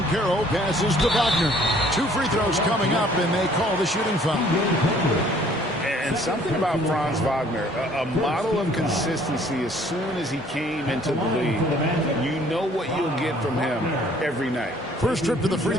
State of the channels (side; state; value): both; normal; correlation 0.58